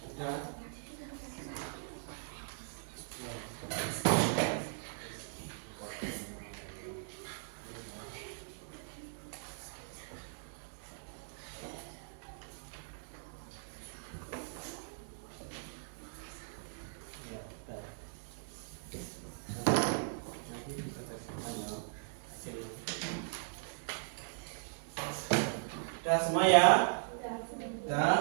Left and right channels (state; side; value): silent; left; digital silence